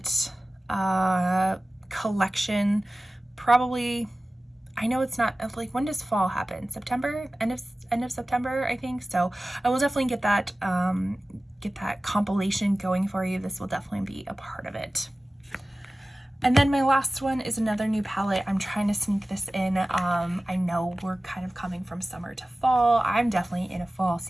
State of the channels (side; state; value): both; normal; correlation 0.96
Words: collection probably. I know it's not like, when does fall happen? September, end of September, I think. So I will definitely get that compilation going for you. This will definitely be a part of it. And then my last one is another new palette. I'm trying to sneak this in. I know we're kind of coming from summer to fall. I'm definitely in a fall